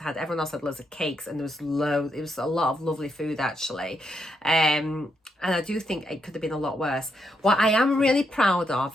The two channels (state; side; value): normal; both; correlation 0.79